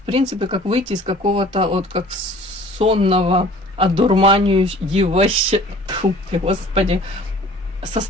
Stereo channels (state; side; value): normal; both; correlation 0.49